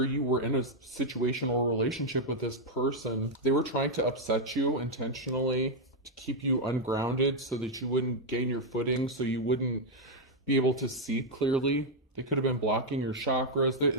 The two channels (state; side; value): normal; both; correlation 0.00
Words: you were in a situation or relationship with this person. They were trying to upset you intentionally to keep you ungrounded so that you wouldn't gain your footing, so you wouldn't be able to see clearly. They could have been blocking your chakras.